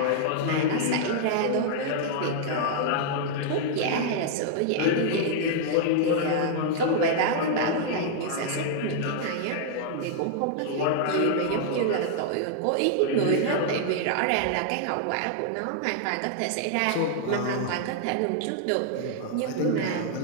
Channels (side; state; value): both; different; correlation -0.01